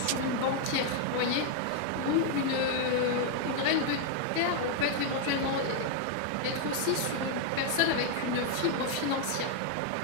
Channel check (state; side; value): different; both; correlation 0.00